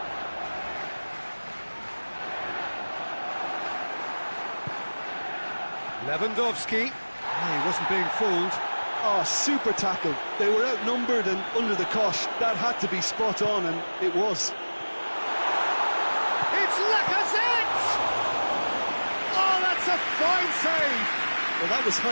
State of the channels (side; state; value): both; inverted; correlation -1.00